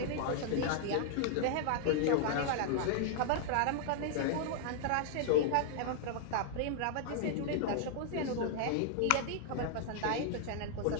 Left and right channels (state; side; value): different; both; correlation -0.01